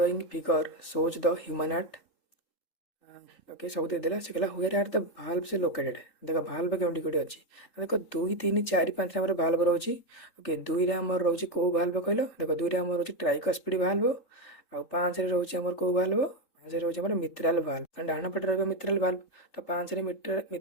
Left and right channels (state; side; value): late; right; 3.3 ms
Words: figure shows the human heart okay सब देदेला से कहला हुएर आर द भाल्व से लोकेटेड देख भाल्व केउटी कोटी अच्छी देख 2 3 4 5 आम भाल्व रोचे ओके 2 रे आम रोचे कौ भाल्व कहल देख 2 रे आम रोचे ट्राइकस्पिड भाल्व आउ 5 रे रोचे आमर कौ भाल्व ପାଞ୍ଚ ରହୁଛି ଆମର ମିତ୍ରାଲ ଭାଲ୍ଭ, କାରଣ ଡାହାଣ ପଟେ ରହିବ ମିତ୍ରାଲ ଭାଲ୍ଭ, ତ ପାଞ୍ଚରେ